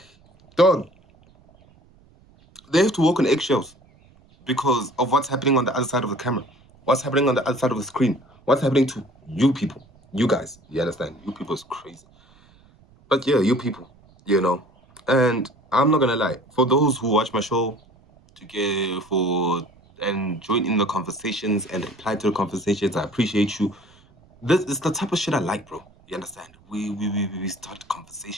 dog, they have to walk on eggshells because of what's happening on the other side of the camera, what's happening on the other side of the screen, what's happening to you people, you guys, you understand? You people is crazy. But yeah, you people, you know. And I'm not gonna lie, for those who watch my show and join in the conversations and reply to the conversations, I appreciate you. This is the type of shit I like, bro. You understand? We start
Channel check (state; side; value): noise; right; rumble, 29 dB below the sound